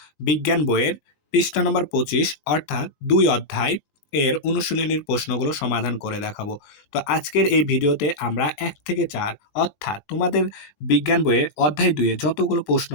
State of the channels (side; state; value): right; late; 21 ms